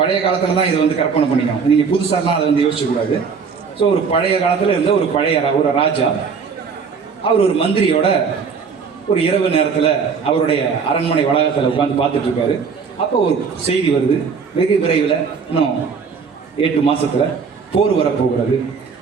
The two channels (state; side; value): quieter; left; 5.7 dB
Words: காலத்தில் தான் இதை வந்து கற்பனை பண்ணிக்கணும், நீங்கள் புதுசாலாம் அதை வந்து யோசிக்கக்கூடாது. ஸோ ஒரு பழைய காலத்தில் இருந்த ஒரு ராஜா, அவர் ஒரு மந்திரியோட ஒரு இரவு நேரத்தில் அவருடைய அரண்மனை வளாகத்தில் உட்காந்து பார்த்துட்டு இருக்காரு. அப்போ ஒரு செய்தி வருது, வெகு விரைவில் இன்னும் 8 மாதத்தில் போர் வரப்போகிறது,